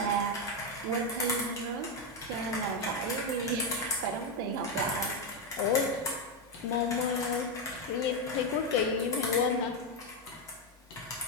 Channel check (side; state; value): both; normal; correlation 0.06